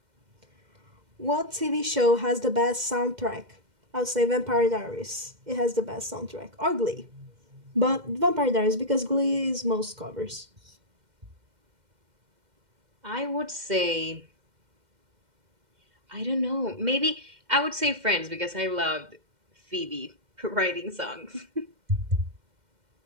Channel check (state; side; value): late; left; 2.1 ms